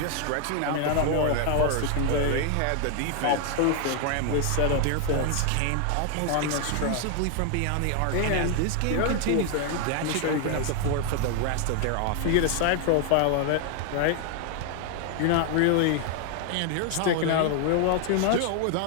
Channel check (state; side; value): different; both; correlation 0.00